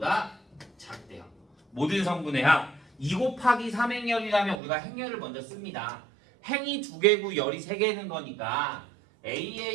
작대요 모든 성분의 합 2 곱하기 3행렬이라면 우리가 행렬을 먼저 씁니다 행이 2개고 열이 3개는 거니까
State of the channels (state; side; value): drops out; left; at 4.6 s